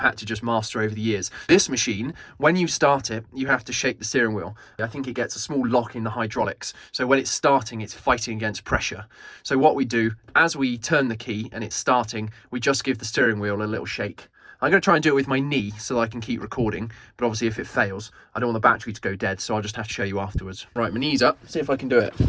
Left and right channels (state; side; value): identical; both; correlation 1.00